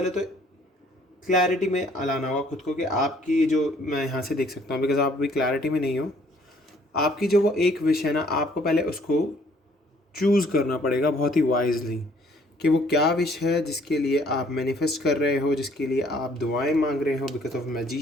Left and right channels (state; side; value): normal; both; correlation 0.61